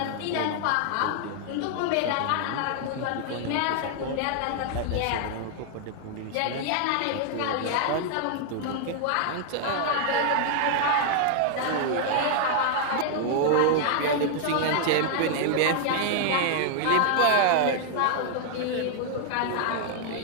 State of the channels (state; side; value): different; both; correlation 0.00